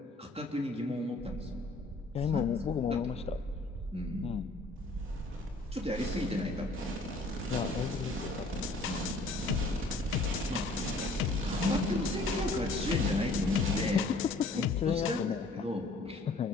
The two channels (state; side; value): quieter; right; 3.0 dB